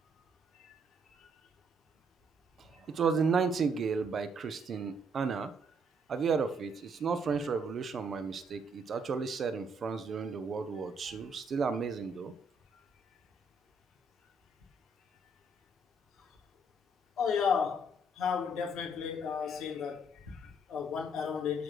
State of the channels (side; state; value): both; normal; correlation 0.69